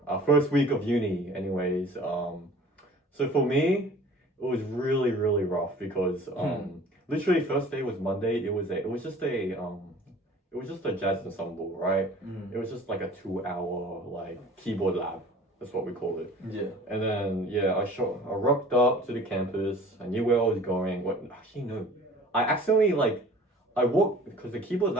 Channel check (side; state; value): both; normal; correlation 0.46